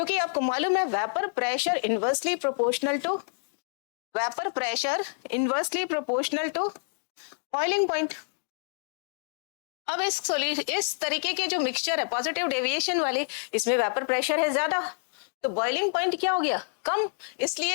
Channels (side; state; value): right; silent; digital silence